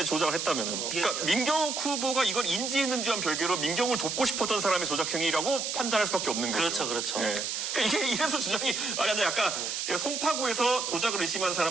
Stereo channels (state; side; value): noise; right; hiss, 2 dB below the sound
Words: 조작을 했다면은. 그러니까 민경우 후보가 이걸 인지했는지와는 별개로 민경우를 돕고 싶었던 사람의 조작행위라고 판단할 수밖에 없는 거죠. 그렇죠, 그렇죠. 네. 그러니까 이게 이래서 주장이 근데 아까 제가 송파구에서 조작을 의심한